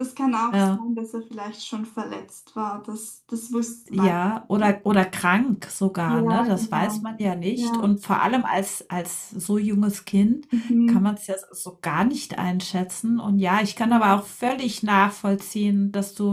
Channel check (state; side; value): identical; both; correlation 1.00